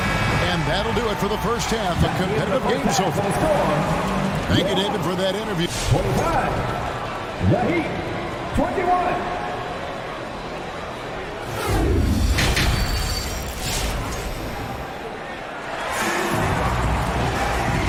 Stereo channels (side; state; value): both; identical; correlation 1.00